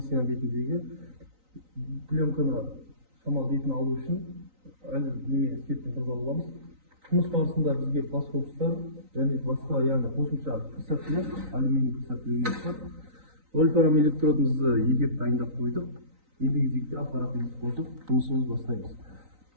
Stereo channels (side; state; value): left; late; 3.9 ms